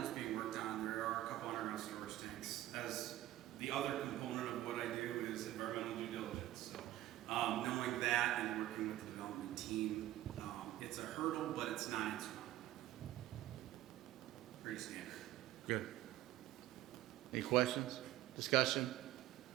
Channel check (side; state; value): left; quieter; 14.7 dB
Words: is being worked on. There are a couple underground storage tanks. As the other component of what I do is environmental due diligence. So knowing that and working with the development team, it's a hurdle, but it's not insurmountable. Pretty standard. Good. Any questions? Discussion?